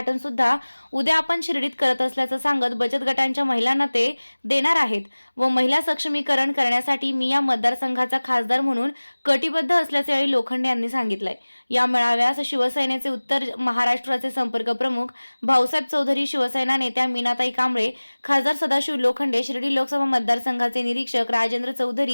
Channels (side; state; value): both; inverted; correlation -1.00